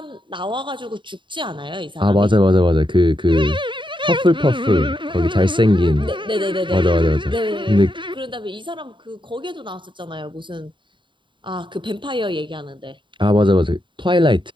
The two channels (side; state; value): left; late; 0.23 ms